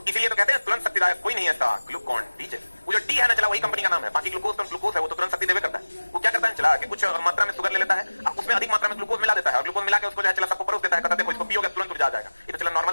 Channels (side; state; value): both; inverted; correlation -1.00